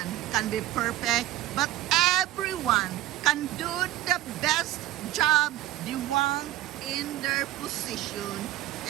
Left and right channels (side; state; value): left; quieter; 14.9 dB